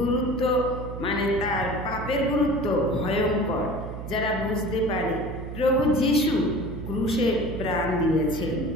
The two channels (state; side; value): noise; right; hum, 9 dB below the sound